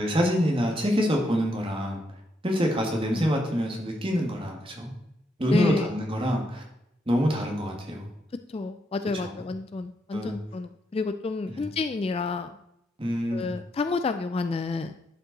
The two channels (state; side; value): normal; both; correlation 0.78